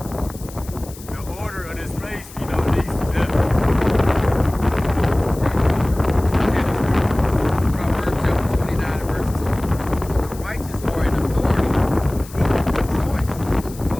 the order of this place, you know, leads to death. Proverbs chapter 29 and verse 2. The righteous are in authority, people have choice. But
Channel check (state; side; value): noise; left; hiss, 18 dB below the sound